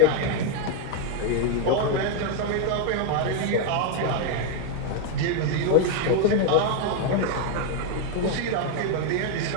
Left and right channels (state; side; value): different; both; correlation 0.01